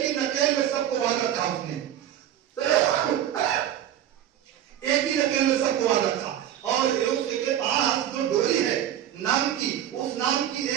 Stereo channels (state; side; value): quieter; left; 11.1 dB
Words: ही नकेल में सबको बांध रखा उसने, एक ही नकेल में सबको बांध रखा। और उसके पास जो डोरी है नाम की, उस नाम की